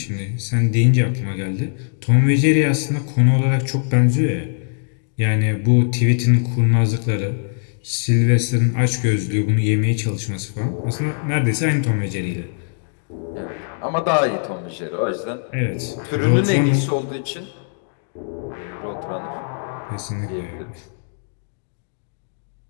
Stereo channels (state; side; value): silent; right; digital silence